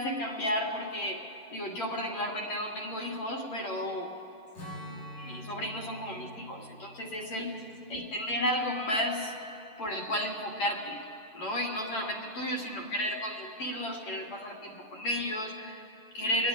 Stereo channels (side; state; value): right; late; 9.0 ms